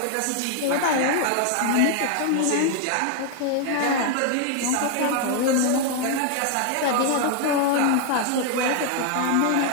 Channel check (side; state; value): both; different; correlation 0.00